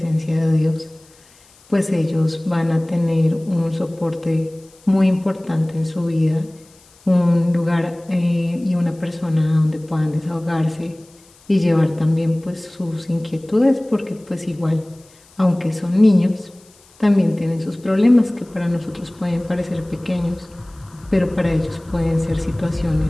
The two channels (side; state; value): left; noise; hiss, 29 dB below the sound